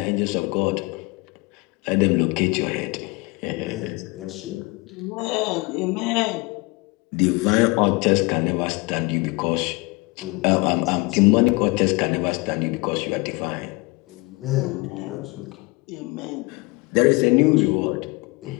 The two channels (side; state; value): right; quieter; 25.8 dB